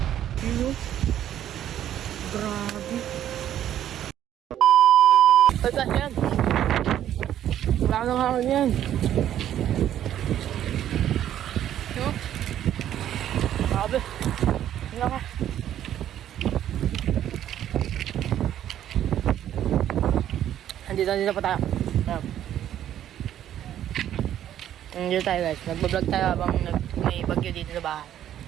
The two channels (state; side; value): quieter; left; 11.2 dB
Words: Hello? Grabe. Ay, guys, yan. Wala nang hangin yan. No? Grabe. Wala ka. Andito pa tayo. Dito tayo guys, nagbablog tayo habang may bagyo dito sa bahay,